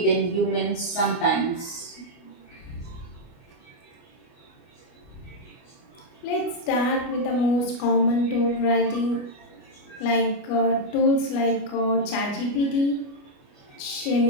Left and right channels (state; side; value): late; right; 29 ms